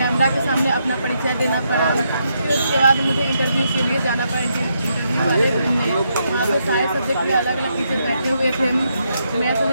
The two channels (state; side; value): inverted; both; correlation -0.79